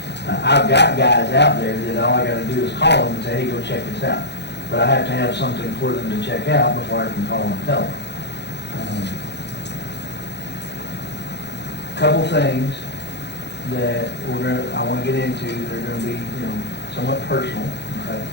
I've got guys out there that all I got to do is call them and say, hey, go check this out. But I have to have something for them to check out before I can call and tell them. Couple things that I want to get into that are going to be, you know, somewhat personal, okay?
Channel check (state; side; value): late; right; 0.50 ms